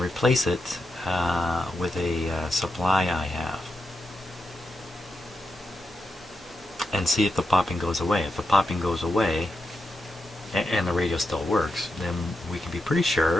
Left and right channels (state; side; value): normal; both; correlation 0.86